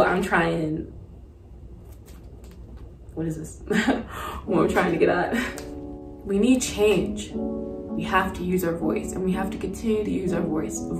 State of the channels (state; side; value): identical; both; correlation 1.00